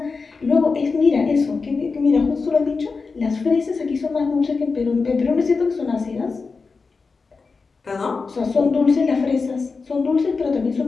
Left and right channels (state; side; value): quieter; right; 4.5 dB